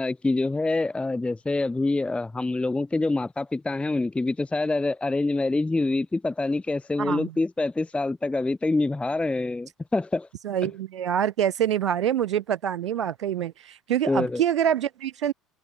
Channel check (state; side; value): normal; both; correlation 0.71